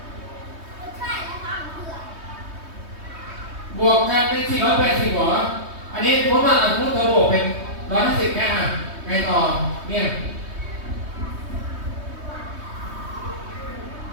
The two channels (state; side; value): late; left; 3.2 ms